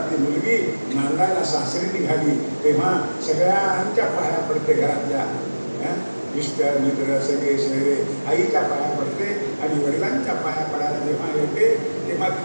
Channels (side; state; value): both; inverted; correlation -1.00